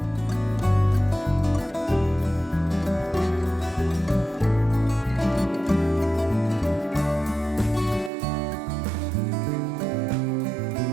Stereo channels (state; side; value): drops out; left; at 8.1 s